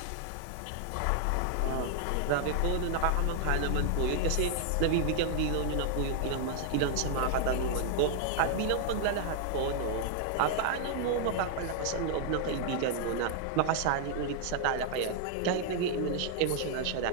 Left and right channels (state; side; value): different; both; correlation -0.01